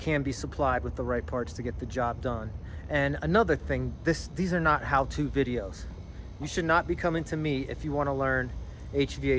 be supplied with the right parts to get the job done. And another thing, these are not how-to videos. You should not be coming to me if you want to learn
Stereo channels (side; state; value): both; identical; correlation 1.00